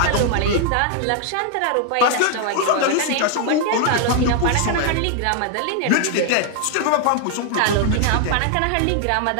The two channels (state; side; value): different; both; correlation 0.00